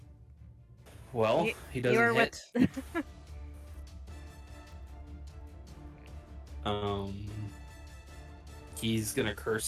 Well, You- he you're doesn't hit. with- He's gonna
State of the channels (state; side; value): identical; both; correlation 1.00